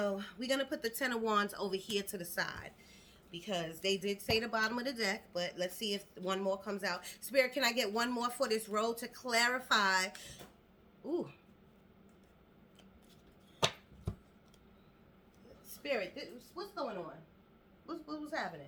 we're going to put the Ten of Wands over here to the side, because they did say the bottom of the deck, but let's see if one more comes out. Spirit, can I get one more for this row to clarify? Ooh. Spirit, what's going on? What's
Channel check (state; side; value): identical; both; correlation 1.00